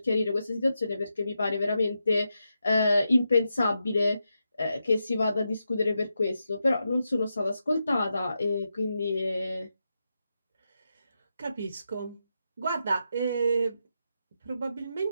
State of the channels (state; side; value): inverted; both; correlation -0.86